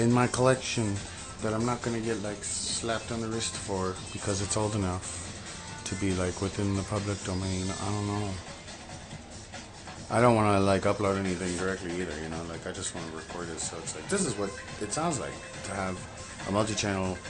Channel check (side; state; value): both; identical; correlation 1.00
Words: my collection that I'm not gonna get like slapped on the wrist for because it's old enough to be like within the public domain. I don't know. I don't want to like upload anything directly either, you know, like I just want to record it so it's like this is what it sounds like to have a multi-channel